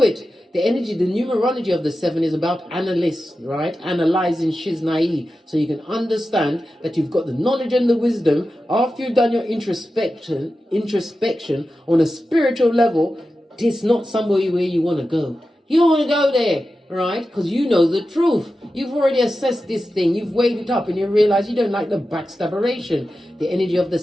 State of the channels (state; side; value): normal; both; correlation 0.92